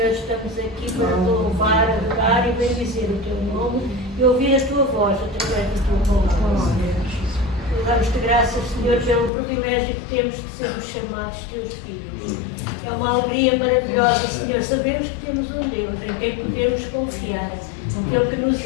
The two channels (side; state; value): right; drops out; at 9.3 s